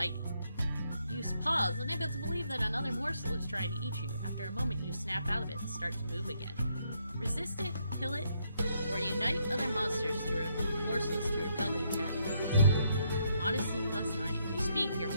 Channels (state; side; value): inverted; both; correlation -0.75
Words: You pause, unable to believe that another morsel is trying to eat you. After a moment, you snap out of it and start to move again. Resist it, kill it, or unite other morsels to repel the attack. Honesty +9. You speak, your